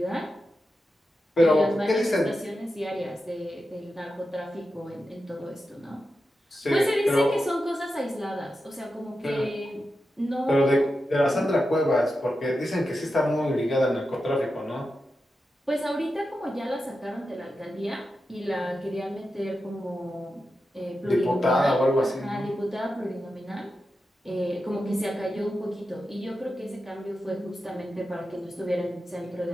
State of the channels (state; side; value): normal; both; correlation 0.90